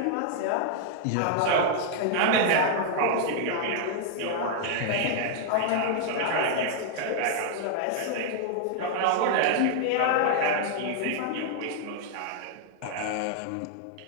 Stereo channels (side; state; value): both; different; correlation 0.00